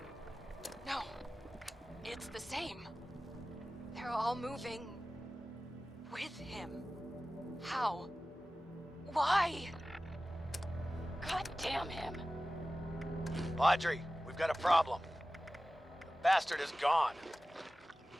No, it's the same. They're all moving with him. How? Why? God damn him. Audrey, we've got a problem. The bastard is gone.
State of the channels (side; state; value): both; normal; correlation 0.96